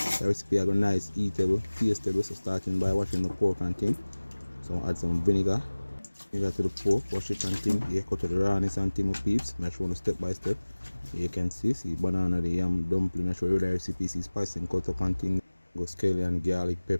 The recipe are nice, eatable, tasteable. So starting by washing the pork and thing. So add some vinegar to the pork, wash it and thing. Yeah, cut to the rawness and thing of peeps. Make sure step by step. You can see banana, the yam, dumpling. I show you the recipe. See spice and cut up and thing. Go scallion, garlic,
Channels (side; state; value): both; inverted; correlation -1.00